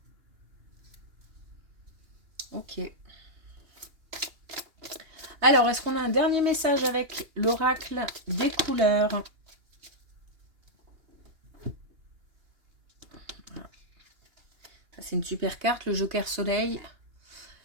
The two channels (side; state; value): left; late; 2.8 ms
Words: Ok. Alors, est-ce qu'on a un dernier message avec l'oracle des couleurs ? C'est une super carte, le Joker Soleil.